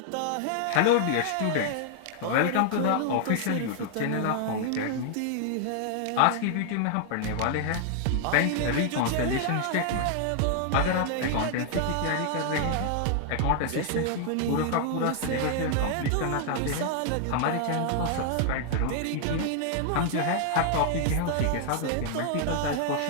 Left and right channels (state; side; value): different; both; correlation 0.00